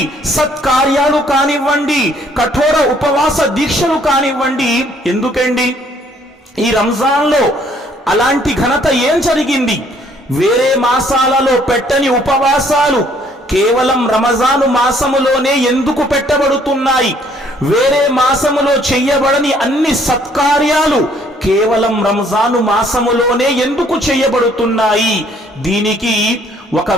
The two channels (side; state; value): both; normal; correlation 0.63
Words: సత్కార్యాలు కానివ్వండి, కఠోర ఉపవాస దీక్షలు కానివ్వండి. ఎందుకండి ఈ రంజాన్లో అలాంటి ఘనత ఏం జరిగింది? వేరే మాసాలలో పెట్టని ఉపవాసాలు కేవలం రమజాను మాసములోనే ఎందుకు పెట్టబడుతున్నాయి? వేరే మాసములో చెయ్యబడని అన్ని సత్కార్యాలు కేవలం రంజాను మాసములోనే ఎందుకు చేయబడుతున్నాయి? దీనికి ఒక